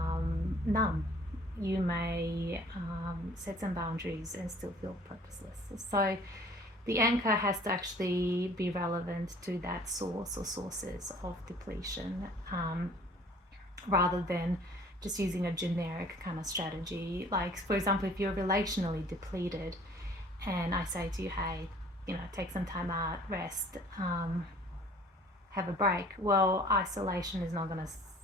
numb. You may set some boundaries and still feel purposeless. So the anchor has to actually be relevant to that source or sources of depletion, rather than just using a generic kind of strategy. Like, for example, if you're relationally depleted and I say to you, hey, take some time out, rest, have a break. Well, isolation is not going to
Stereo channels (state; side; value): normal; both; correlation 0.52